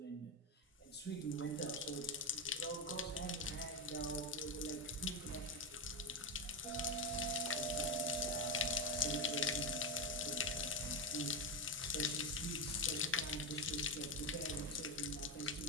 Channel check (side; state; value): both; normal; correlation 0.12